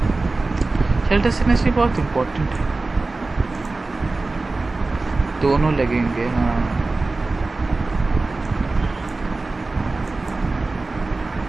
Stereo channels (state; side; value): quieter; left; 3.4 dB